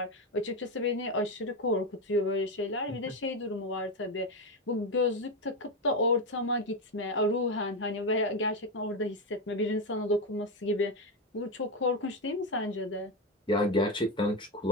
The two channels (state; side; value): normal; both; correlation 0.11